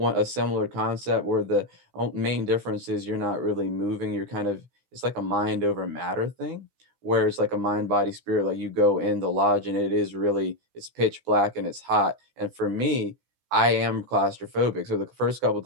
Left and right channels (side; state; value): left; late; 16 ms